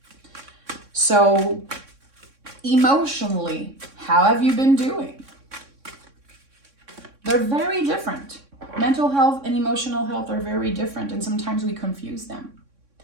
So emotionally, how have you been doing? They're very different. Mental health and emotional health are very different, and sometimes we confuse them.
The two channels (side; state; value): left; late; 3.6 ms